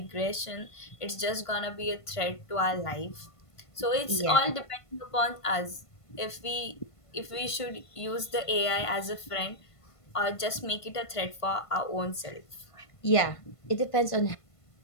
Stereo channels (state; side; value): late; right; 1.5 ms